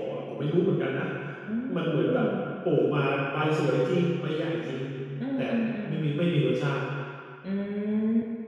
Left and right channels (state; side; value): identical; both; correlation 1.00